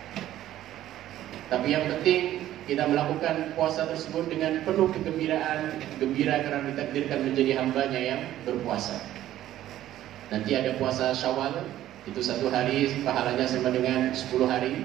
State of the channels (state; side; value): quieter; left; 13.2 dB